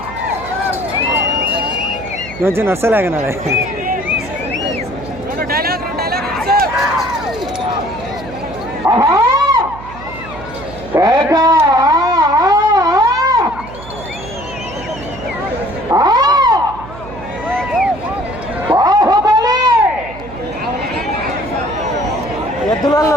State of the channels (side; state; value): right; noise; hum, 15 dB below the sound